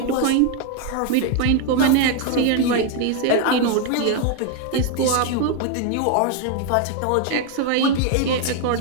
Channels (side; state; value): both; different; correlation 0.01